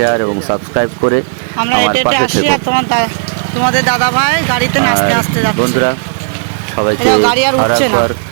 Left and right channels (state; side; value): silent; left; digital silence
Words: এবং সাবস্ক্রাইব করে আমরা আমার হেঁটে হেঁটে পাশে আসি, থেকো। আর তোমাদের দাদা ভাই গাড়িতে নাচতে আর নাচতে যাচ্ছে। বন্ধুরা, সবাইকে এটাও গাড়ি আর উঠছে না। আরেকবার